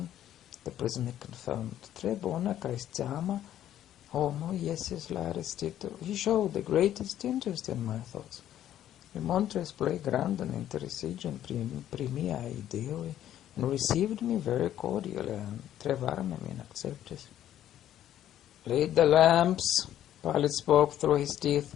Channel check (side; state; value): right; quieter; 11.6 dB